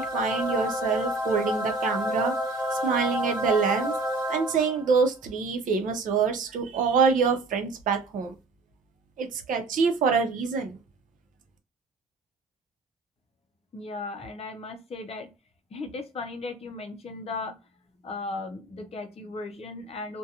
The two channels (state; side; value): quieter; left; 3.6 dB